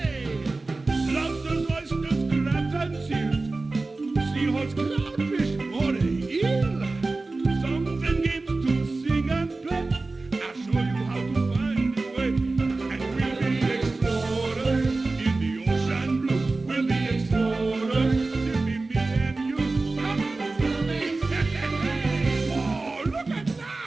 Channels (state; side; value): quieter; left; 3.4 dB